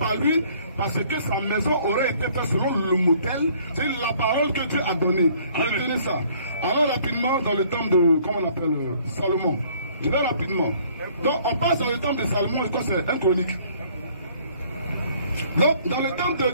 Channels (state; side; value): inverted; both; correlation -0.59